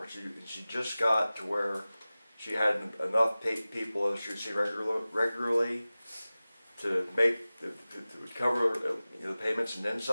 She just got to where she had enough people that she would see regularly to make to cover the payments and then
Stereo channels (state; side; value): inverted; both; correlation -0.97